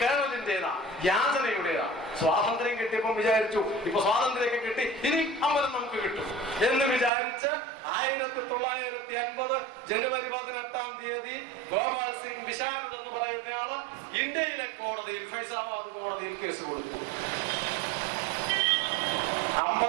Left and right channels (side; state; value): left; drops out; at 7.1 s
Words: കേരളത്തിന്റേതാ, യാചനയുടേതാ. സ്വാതന്ത്ര്യം കിട്ടിയപ്പം വിചാരിച്ചു ഇപ്പൊ സ്വാതന്ത്ര്യമൊക്കെ കിട്ടി, ഇനി അമ്പലം നമുക്ക് കിട്ടും എന്ന് വിചാരിച്ച് 1950 ജനുവരി 18-ാം തീയതി ഗോപാൽ സിംഗ് വിശാരദ് എന്ന് പറയുന്നയാള് ഇന്ത്യയിലെ കോടതിയിൽ, ഫൈസാബാദ് കോടതിയിൽ കേസ് കൊടുത്തു.